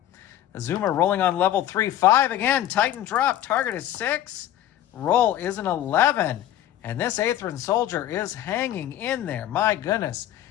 Azuma rolling on level 3. 5 again, Titan drop. Target is 6. Roll is an 11. And this Aethran soldier is hanging in there. My goodness.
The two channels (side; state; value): right; quieter; 12.5 dB